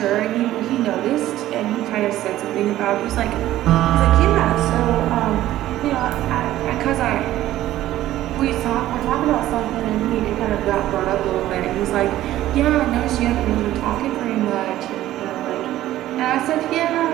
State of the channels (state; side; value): quieter; left; 14.2 dB